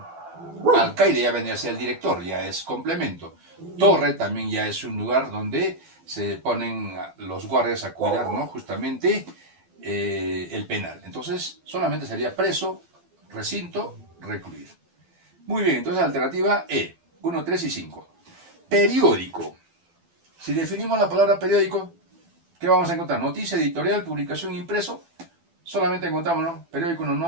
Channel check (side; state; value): left; late; 12 ms